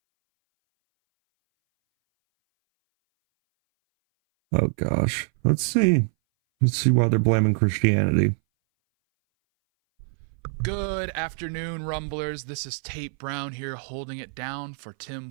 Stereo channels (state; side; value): silent; left; 59 dB below the other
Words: Oh gosh. Let's see why they're blaming Christianity. Good afternoon, Rumblers. This is Tate Brown here holding it down for Tim